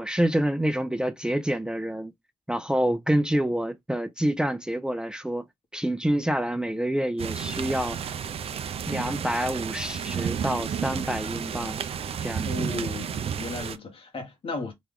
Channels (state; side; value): normal; both; correlation 0.86